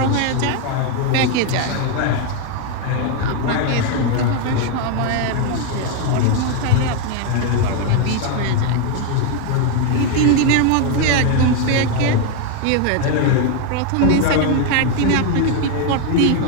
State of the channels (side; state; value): both; different; correlation 0.01